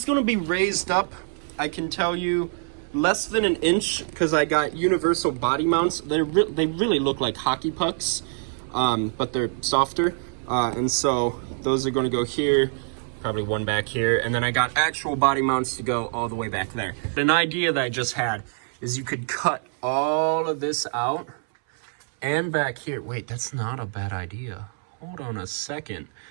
going to be raised up, I can tell you, less than an inch, because I got universal body mounts. They really look like hockey pucks, but they're softer. And so those are going to go here, probably one back here, and then I got actual body mounts to go all the way back there. An idea that I just had is you could cut all of this out and back here. Wait, that's not a bad idea. Hold on a second.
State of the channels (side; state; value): left; silent; 62 dB below the other